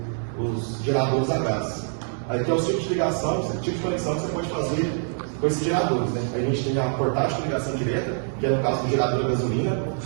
os geradores a gás. Aí tem o tipo de ligação, o tipo de conexão que você pode fazer com esses geradores. Né? A gente tem a portátil de ligação direta, que é no caso do gerador a gasolina,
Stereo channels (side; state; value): left; silent; 62 dB below the other